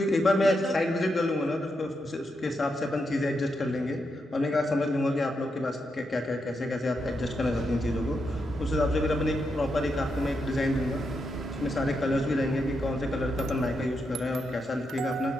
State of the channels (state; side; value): normal; both; correlation 0.83